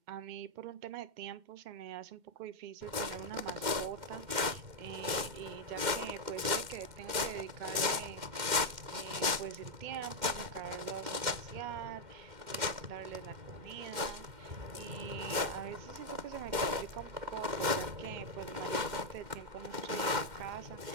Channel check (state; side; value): late; left; 2.1 ms